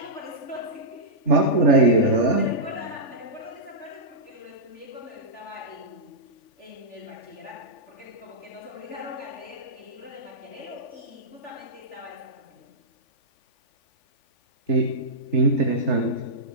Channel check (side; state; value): right; late; 3.4 ms